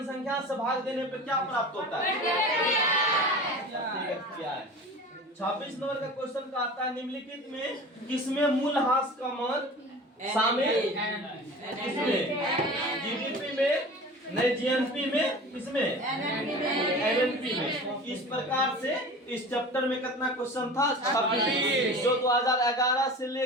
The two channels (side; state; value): both; normal; correlation 0.37